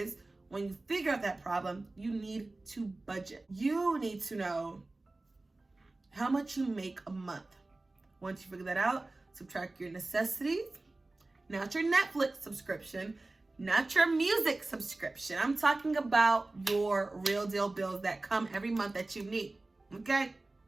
when you figure out that problem, you need to budget. You need to know how much you make a month. Once you figure that out, subtract your necessities, not your Netflix subscription, not your music subscription. I'm talking about your real deal bills that come every month that you need. Okay?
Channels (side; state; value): left; quieter; 3.1 dB